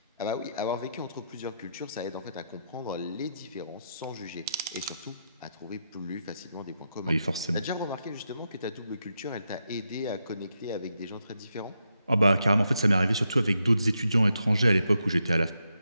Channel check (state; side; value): inverted; both; correlation -0.83